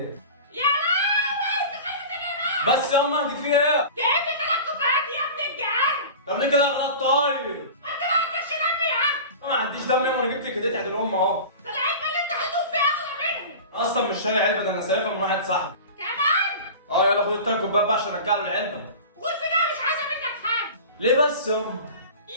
يا لهوي انت خدت الهديه. بس ياما دي في ايه؟ جايب لي 3 كوبايات يا ابن الجعان. طب ليه كده غلط طيب؟ انت ما عندكش دم يا عم. ما عنديش دم ياما، انا جبت لك هديه عيد الام اهو. ده العلبه اللي انت هتدوب فيها اغلى منهم. اصلا مش شاري علبه، ده انا سايبها من واحد صاحبي. كمان؟ يلا خد ال3 كوبايات بقى عشان ارجع له العلبه. قول في ده مش عايزه منك حاجه. ليه بس ياما؟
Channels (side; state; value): both; inverted; correlation -0.35